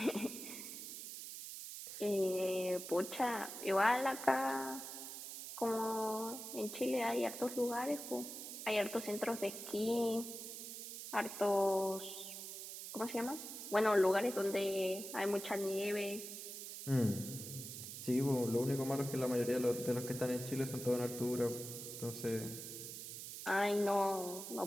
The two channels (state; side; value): noise; right; hiss, 9 dB below the sound